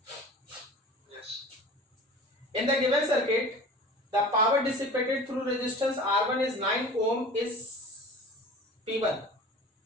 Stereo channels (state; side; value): normal; both; correlation 0.39